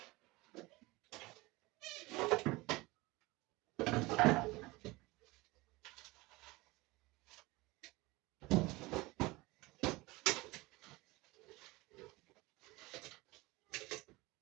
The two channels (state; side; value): quieter; left; 21.9 dB